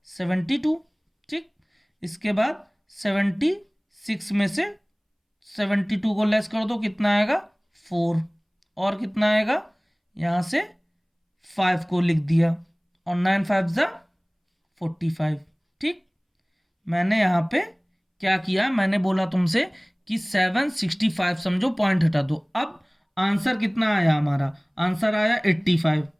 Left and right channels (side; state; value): both; identical; correlation 1.00